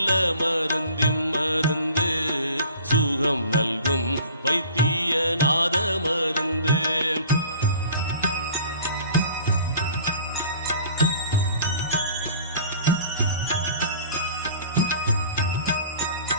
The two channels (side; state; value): both; inverted; correlation -0.46